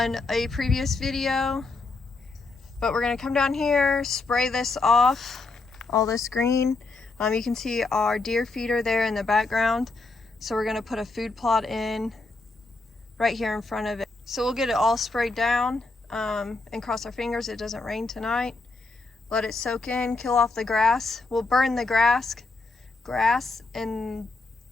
a previous video, but we're gonna come down here, spray this off, all this green. You can see our deer feeder there in the background. So we're gonna put a food plot in right here in front of it. So we'll get it all sprayed down and cross our fingers it doesn't rain tonight. Let it soak in, kill off the grass. We'll burn the grass and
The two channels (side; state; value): right; quieter; 3.6 dB